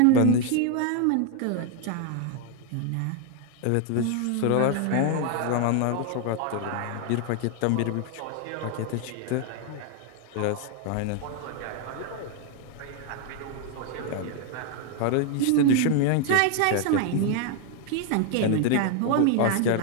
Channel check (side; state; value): both; different; correlation 0.00